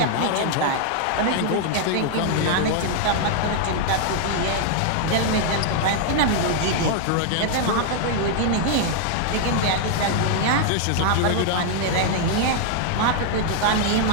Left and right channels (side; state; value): both; different; correlation 0.00